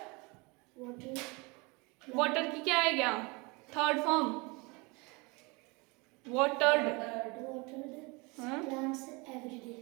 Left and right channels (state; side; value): quieter; left; 27.6 dB